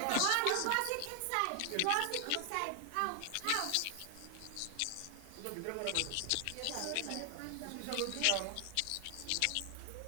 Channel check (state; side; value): different; both; correlation 0.00